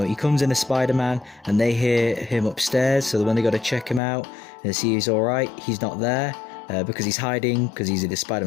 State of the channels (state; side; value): drops out; right; at 4.0 s